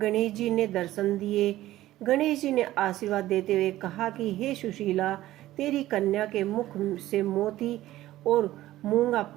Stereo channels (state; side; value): quieter; left; 15.1 dB